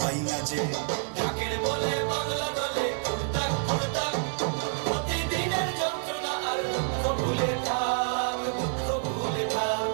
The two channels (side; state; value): left; silent; 59 dB below the other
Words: পাই না যে। ঢাকের বলে বাংলা দলে ঘুরতাক ঘুরতাক, প্রতিদিনের যন্ত্রণা আর দুঃখ ভুলে থাক, দুঃখ ভুলে থাক,